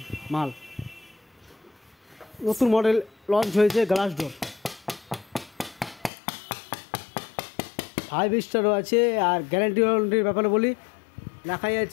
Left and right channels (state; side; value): drops out; right; at 6.1 s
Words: মাল নতুন মডেল লঞ্চ হয়েছে। গ্লাস ডোর 5 স্টারও আছে। আর গ্যারান্টির ব্যাপারে বলি, লেখাই